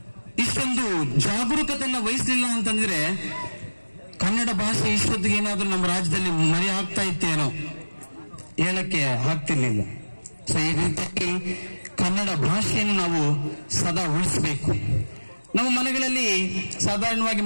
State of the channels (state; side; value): inverted; both; correlation -1.00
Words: ಇಷ್ಟೊಂದು ಜಾಗರೂಕತೆಯನ್ನ ವಹಿಸಲಿಲ್ಲ ಅಂತಂದ್ರೆ ಕನ್ನಡ ಭಾಷೆ ಇಷ್ಟೊತ್ತಿಗೆ ಏನಾದ್ರೂ ನಮ್ಮ ರಾಜ್ಯದಲ್ಲಿ ಮರೆ ಆಗ್ತಾ ಇತ್ತೇನೋ ಹೇಳಕ್ಕೆ ಆಗ್ತಿರ್ಲಿಲ್ಲ. ಸೊ ಈ ರೀತಿಯಾಗಿ ಕನ್ನಡ ಭಾಷೆಯನ್ನು ನಾವು ಸದಾ ಉಳಿಸಬೇಕು. ನಮ್ಮ ಮನೆಗಳಲ್ಲಿ ಸಾಧಾರಣವಾಗಿ